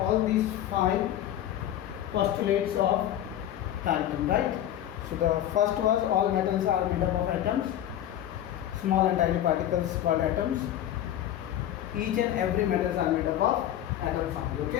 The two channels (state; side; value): quieter; right; 11.7 dB